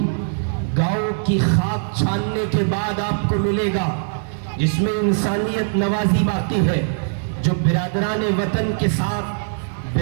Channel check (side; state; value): left; silent; digital silence